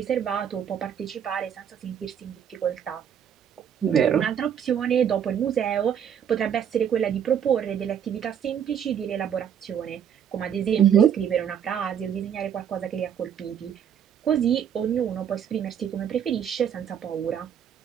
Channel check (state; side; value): quieter; left; 8.6 dB